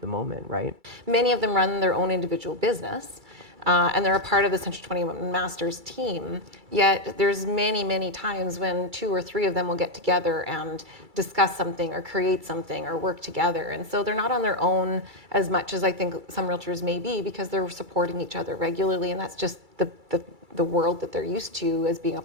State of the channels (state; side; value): late; left; 2.3 ms